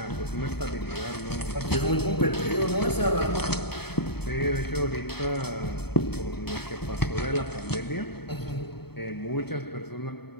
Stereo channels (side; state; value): right; late; 0.97 ms